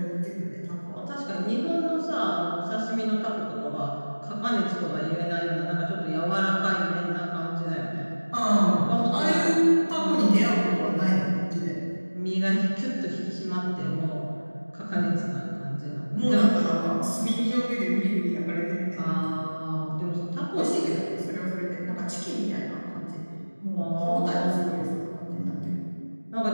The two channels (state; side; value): inverted; both; correlation -1.00